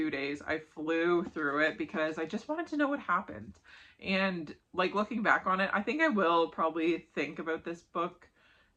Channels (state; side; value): identical; both; correlation 1.00